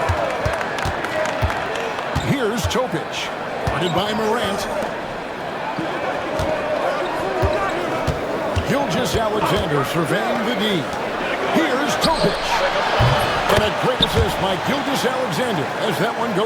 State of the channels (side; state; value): both; identical; correlation 1.00